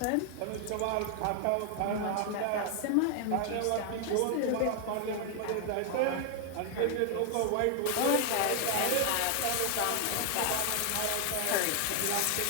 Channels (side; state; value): both; different; correlation 0.00